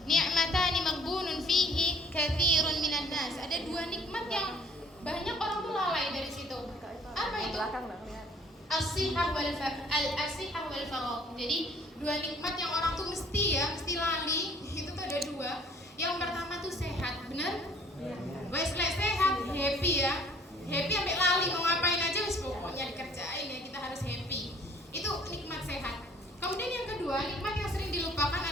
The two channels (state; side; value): normal; both; correlation 0.57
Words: ni'matani maghbunun fihi katsirun minan nas. Ada dua nikmat yang banyak orang tuh lalai dari situ. Apa itu? As-sihah wal faragh. Jadi dua nikmat yang orang tuh mesti lali. Itu tuh ada dua. Yang pertama tuh sehat, benar? Wes lek sehat, happy ya. Happy sampai lali mau ngapain aja wis pokoknya dikerjain ya, kita harus happy. Itu nikmat sehat. Kemudian yang kedua, nikmat yang sering dilupakan